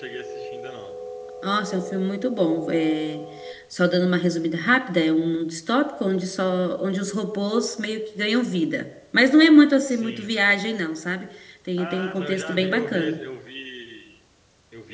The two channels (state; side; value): identical; both; correlation 1.00